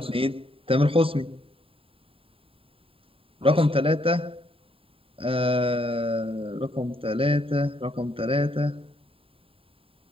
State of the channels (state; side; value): late; left; 0.27 ms